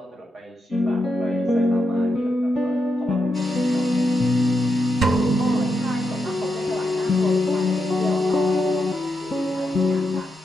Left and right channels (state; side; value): normal; both; correlation 0.85